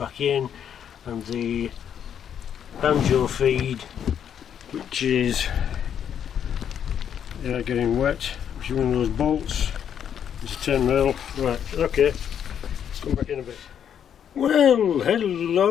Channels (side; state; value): right; quieter; 8.8 dB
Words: in, and the banjo feed, which is getting wet, which is one of those bolts. It's a 10 mil. Right, okay, come back in a bit. Well,